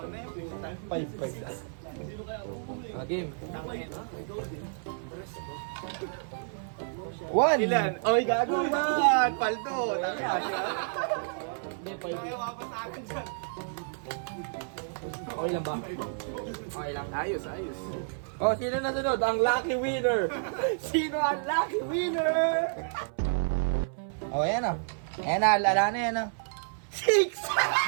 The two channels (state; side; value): silent; left; 58 dB below the other